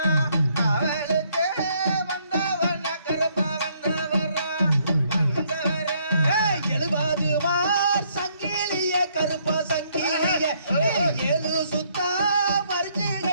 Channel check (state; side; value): inverted; both; correlation -0.69